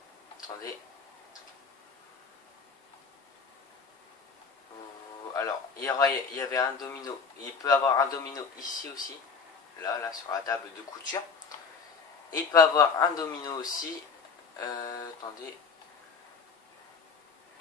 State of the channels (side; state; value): right; quieter; 5.4 dB